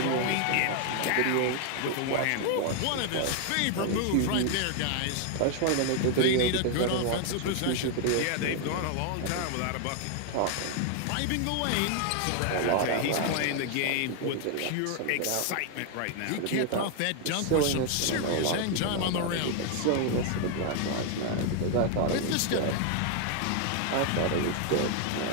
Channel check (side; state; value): both; different; correlation 0.00